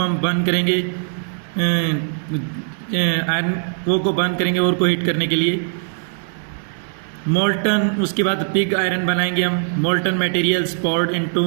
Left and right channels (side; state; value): left; silent; 66 dB below the other